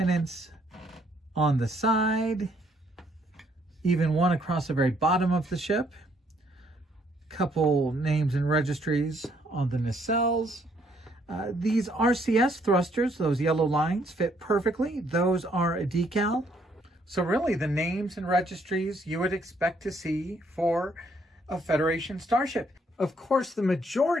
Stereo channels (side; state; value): both; normal; correlation 0.68